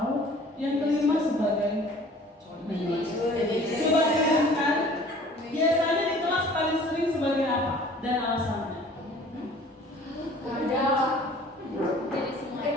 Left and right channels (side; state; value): both; normal; correlation 0.50